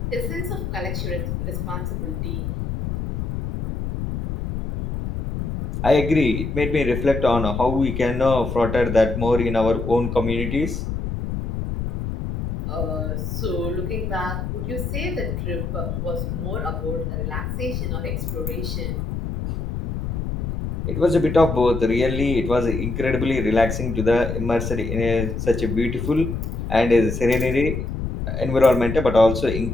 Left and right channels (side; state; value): left; noise; rumble, 4 dB below the sound